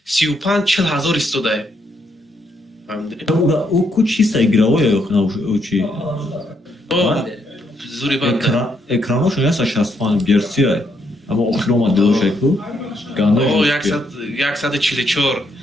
35-40 هزار استوده او کو چیست ایگراو یا خنا او چی او زوری باد اکرانوش یا 65 گرسی ای اما اخرام دوش کو گاندا او 144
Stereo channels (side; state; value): both; normal; correlation 0.75